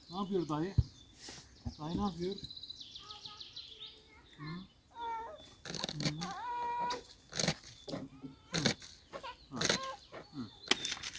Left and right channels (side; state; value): both; identical; correlation 1.00